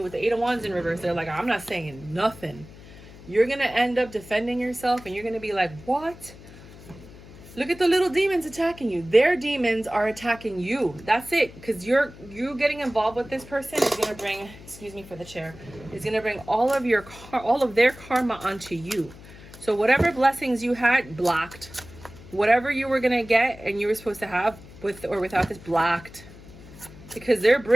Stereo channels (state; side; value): noise; left; hum, 19 dB below the sound